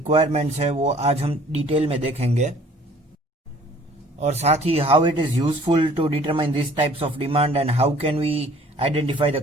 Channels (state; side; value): normal; both; correlation 0.54